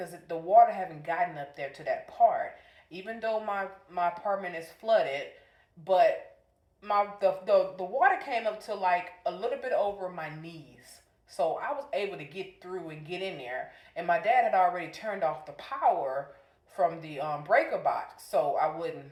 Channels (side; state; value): both; identical; correlation 1.00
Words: the water haven't gotten up there to that part. Even though my apartment is flooded, but the water came up to like a little bit over my knees." So I was able to get through and get in there. And my dad had already turned off the power from the breaker box so I wouldn't